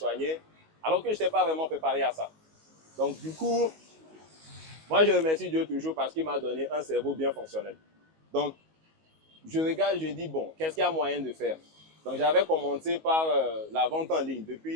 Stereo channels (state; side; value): late; left; 19 ms